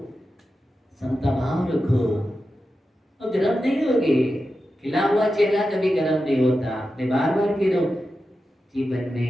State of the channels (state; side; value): normal; both; correlation 0.91